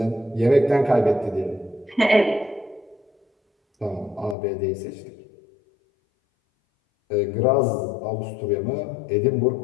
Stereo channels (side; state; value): right; drops out; at 4.4 s